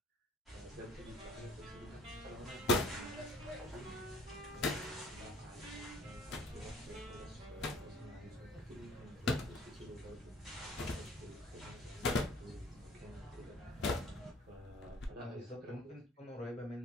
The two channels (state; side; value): normal; both; correlation 0.54